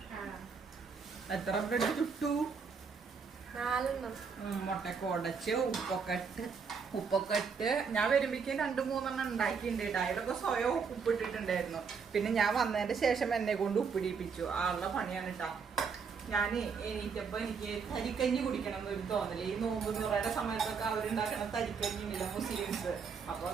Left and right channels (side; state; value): left; quieter; 5.7 dB